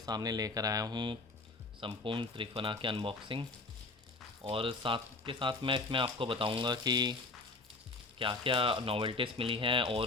लेकर आया हूं संपूर्ण त्रिफला की अनबॉक्सिंग। और साथ के साथ मैं इसमें आपको बताऊंगा कि क्या क्या नॉवेल्टीज़ मिली हैं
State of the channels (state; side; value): quieter; right; 3.4 dB